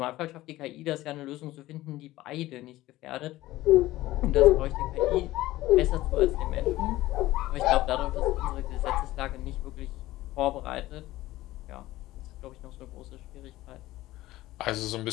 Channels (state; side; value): quieter; right; 16.6 dB